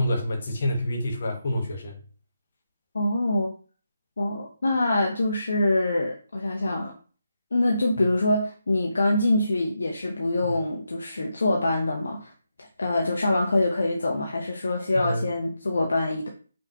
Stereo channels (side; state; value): both; inverted; correlation -0.86